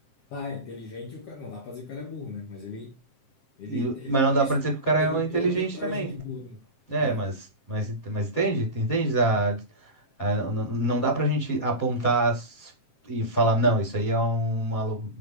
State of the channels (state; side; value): late; right; 7.6 ms